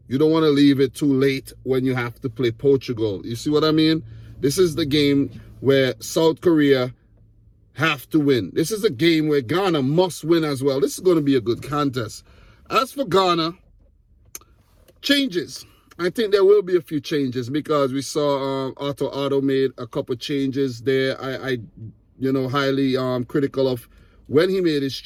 You don't want to leave it too late when you have to play Portugal. You see what I mean? This is the game where South Korea have to win. This is a game where Ghana must win as well. This is going to be a good contest. As for Ghana, changes. I think there will be a few changes, because we saw Otto made a couple changes there. I highly critical of when he made his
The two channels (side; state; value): both; identical; correlation 1.00